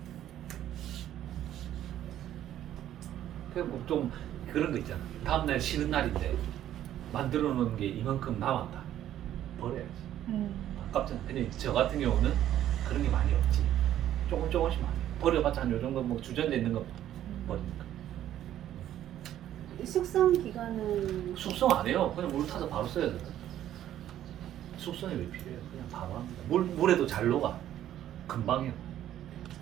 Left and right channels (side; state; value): left; quieter; 11.9 dB